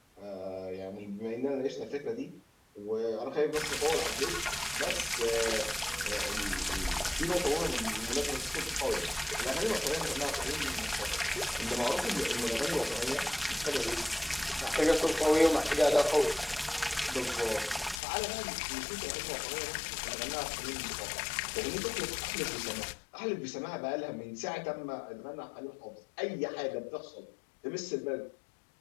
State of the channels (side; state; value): right; drops out; at 18.0 s